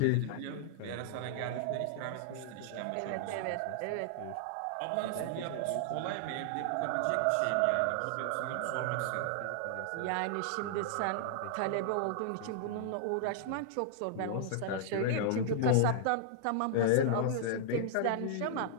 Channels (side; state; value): both; different; correlation -0.01